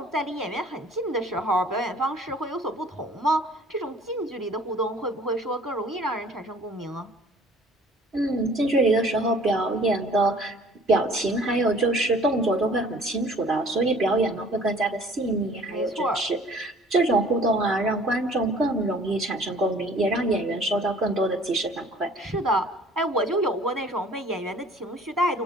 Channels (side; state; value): both; normal; correlation 0.52